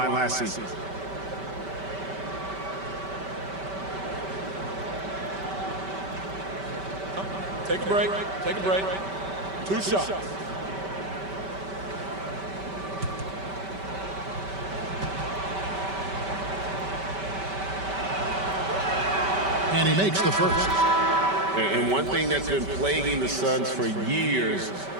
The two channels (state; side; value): late; left; 5.2 ms